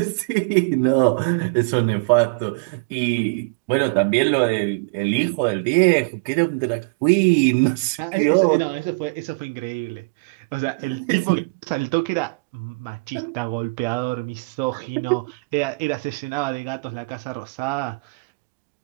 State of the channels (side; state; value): left; quieter; 32.1 dB